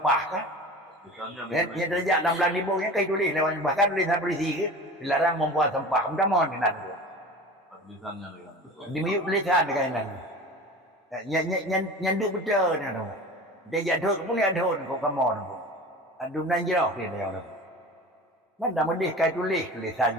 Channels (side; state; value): both; normal; correlation 0.35